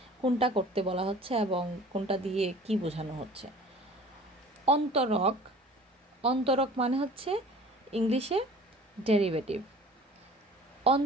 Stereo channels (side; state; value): both; normal; correlation 0.46